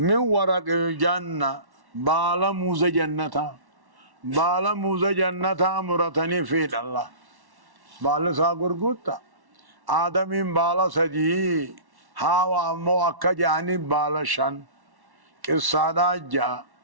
من ورق الجنة بالا موز جنتا بالا موز جنتا مرتني في الله بالا ساقر قوتا آدمين بالا سجي هاو أمو أكا جاني بالا شن قصادا جا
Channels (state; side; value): late; left; 1.1 ms